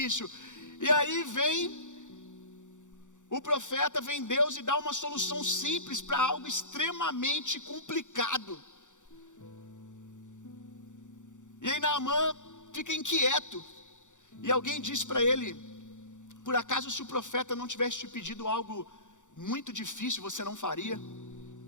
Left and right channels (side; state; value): right; late; 0.86 ms